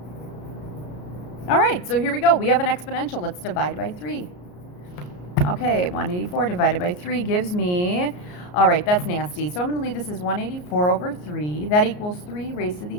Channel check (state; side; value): late; right; 33 ms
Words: All right, so here we go. We have an exponential. Let's divide by 3. Okay, 184 divided by 3 gives me, all right, that's nasty. So I'm going to leave this as 184 over 3. That equals 3 raised to